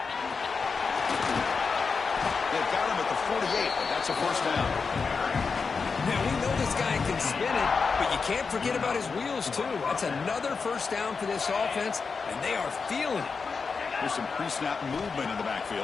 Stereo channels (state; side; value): quieter; right; 5.0 dB